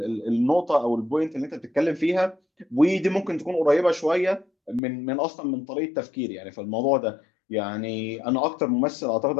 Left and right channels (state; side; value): drops out; right; at 4.8 s